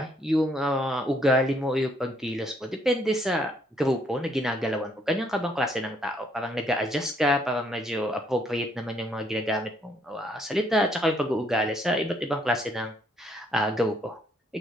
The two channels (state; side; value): normal; both; correlation 0.69